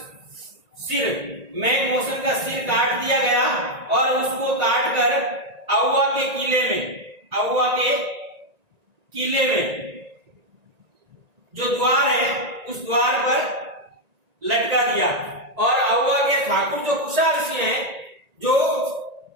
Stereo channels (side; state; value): left; late; 1.9 ms